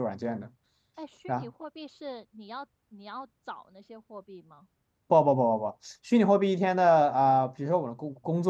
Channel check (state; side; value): identical; both; correlation 1.00